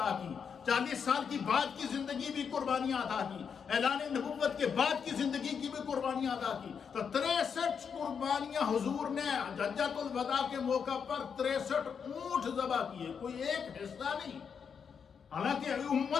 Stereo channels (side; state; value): right; quieter; 6.7 dB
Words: کی، 40 سال کی بعد کی زندگی بھی قربانیاں عطا کی، اعلان نبوت کے بعد کی زندگی کی بھی قربانیاں عطا کی۔ تو 63 قربانیاں حضور نے حجۃ الوداع کے موقع پر 63 اونٹ ذبح کیے، کوئی ایک حصہ نہیں، حالانکہ